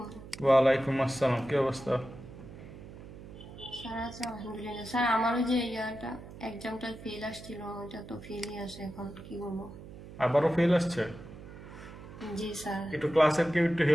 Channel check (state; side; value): noise; right; hum, 15 dB below the sound